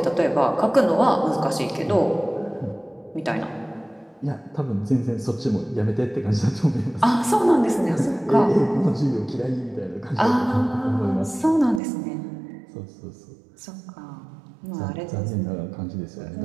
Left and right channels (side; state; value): left; drops out; at 11.8 s